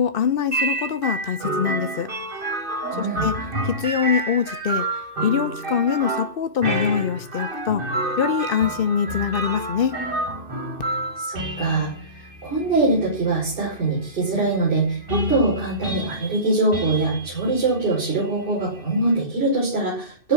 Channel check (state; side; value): late; right; 2.6 ms